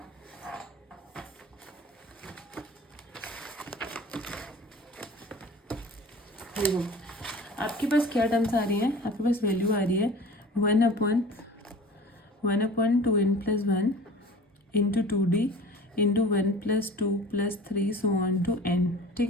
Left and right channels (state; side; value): normal; both; correlation 0.41